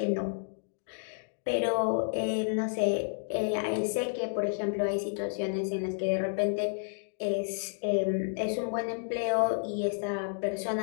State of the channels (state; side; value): silent; right; digital silence